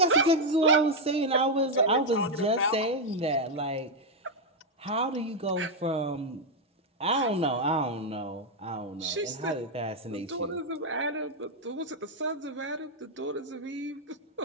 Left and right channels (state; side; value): normal; both; correlation 0.01